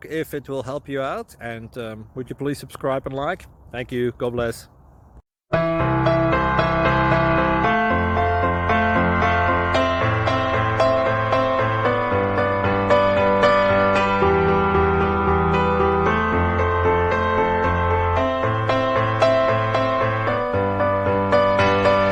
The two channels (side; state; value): both; identical; correlation 1.00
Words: if it will help you out, and would you please subscribe and like? Thank you. God bless.